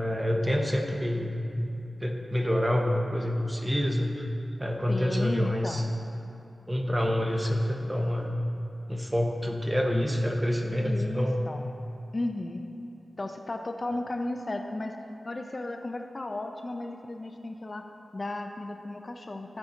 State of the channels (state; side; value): normal; both; correlation 0.97